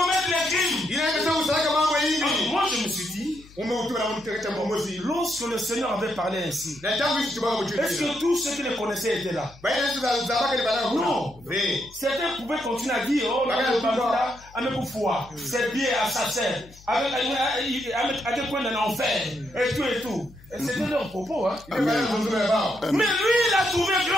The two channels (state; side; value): noise; left; hum, 23 dB below the sound